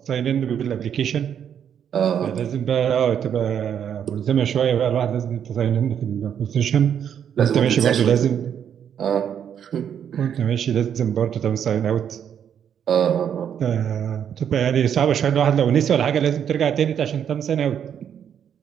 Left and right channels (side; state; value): left; quieter; 8.7 dB